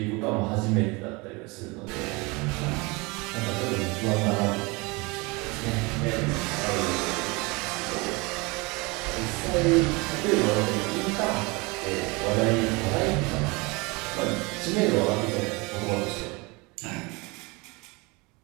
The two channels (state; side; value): quieter; left; 26.3 dB